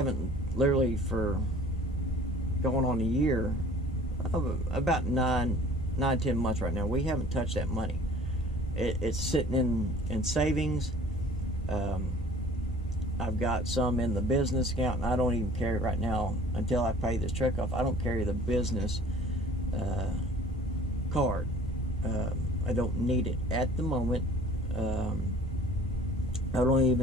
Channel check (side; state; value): both; normal; correlation 0.49